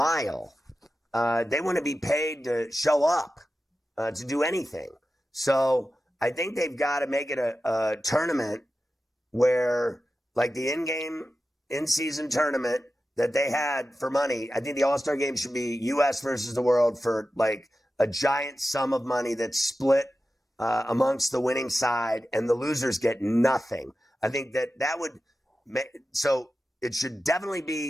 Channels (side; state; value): both; normal; correlation 0.93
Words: They want to be paid to show up, to do anything. So I think they've got to make it a tournament where, like the in-season tournament that they had for money, I think the All-Star game should be U.S. versus the world for like a giant sum of money that's split amongst the winning side, and the losers get nothing. I think that would make, so it should definitely